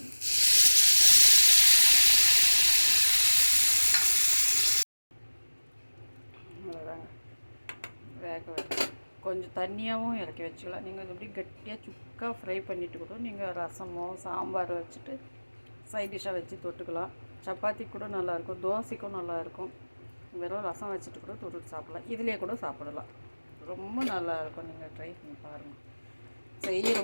அவ்வளோதாங்க. வேக வச்சு கொஞ்சம் தண்ணியாகவும் இறக்கி வச்சுக்கலாம். நீங்கள் எப்படி கட்டியாக சுக்காக ஃப்ரை பண்ணிவிட்டு கூட நீங்கள் ரசமோ சாம்பார் வச்சுட்டு சைட் டிஷ்ஷாக வச்சு தொட்டுக்கலாம். சப்பாத்தி கூட நல்லாயிருக்கும், தோசைக்கும் நல்லாயிருக்கும். வெறும் ரசம் வச்சுட்டு கூட தொட்டுட்டு சாப்பிட்லாம். இதிலே கூட சாப்பிடலாம். ரொம்ப நல்லாயிருக்கும். நீங்கள் ட்ரை பண்ணி பாருங்கள்.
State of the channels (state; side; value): inverted; both; correlation -1.00